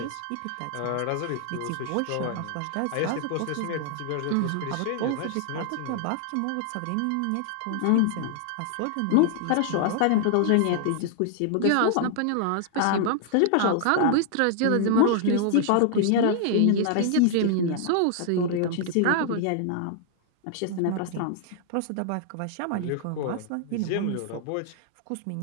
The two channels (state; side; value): different; both; correlation 0.00